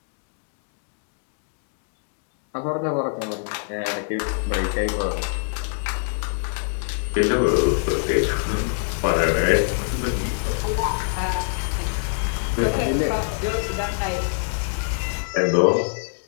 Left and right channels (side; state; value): right; silent; digital silence